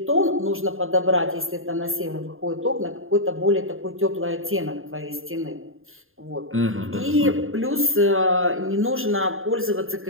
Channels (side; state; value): left; late; 0.60 ms